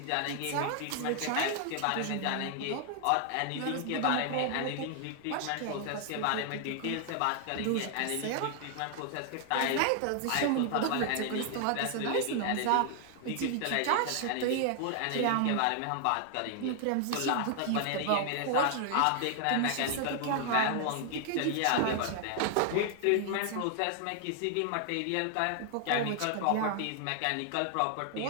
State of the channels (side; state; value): both; different; correlation 0.00